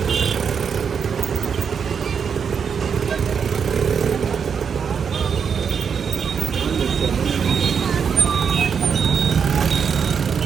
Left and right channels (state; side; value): quieter; left; 6.7 dB